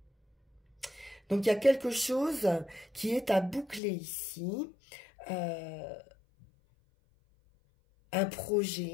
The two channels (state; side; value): drops out; right; at 3.8 s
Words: Donc il y a quelque chose qui est à boucler ici, un